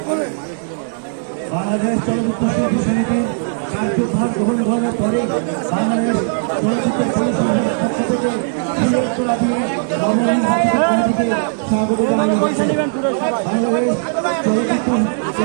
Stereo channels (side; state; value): left; silent; digital silence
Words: বাংলাদেশ চলচ্চিত্র শিল্পী সমিতির কার্যভার গ্রহণ করার পরে বাংলাদেশ চলচ্চিত্র পরিষদের পক্ষ থেকে স্বাগত জানানো হচ্ছে। বাংলাদেশ চলচ্চিত্র